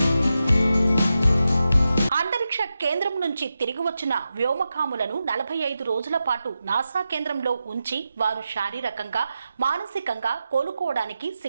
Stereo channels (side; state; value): both; inverted; correlation -0.90